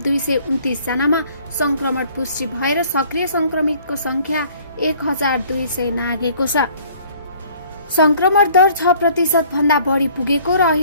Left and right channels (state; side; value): inverted; both; correlation -0.56